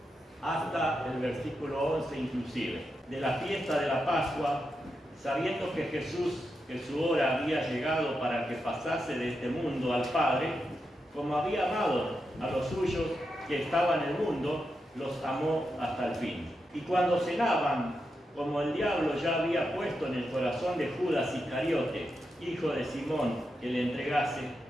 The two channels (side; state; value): both; normal; correlation 0.86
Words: hasta el versículo 11 inclusive. De la fiesta de la Pascua, sabiendo que Jesús, que su hora había llegado para que pasase de este mundo al Padre, como había amado a los suyos que estaban en el mundo, los amó hasta el fin. Y cuando cenaban, como el diablo ya había puesto en el corazón de Judas Iscariote, hijo de Simón, que le entregase,